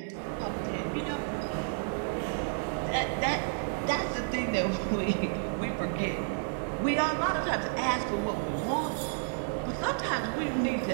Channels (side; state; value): left; silent; digital silence